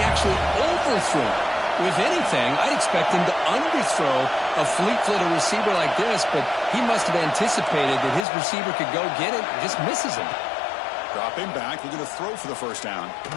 actually overthrew. If anything, I'd expect him to underthrow a fleet-footed receiver like this, but he must have anticipated that his receiver could go get it and just misses him. Dropping back, looking to throw for the first down.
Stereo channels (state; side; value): drops out; right; at 8.2 s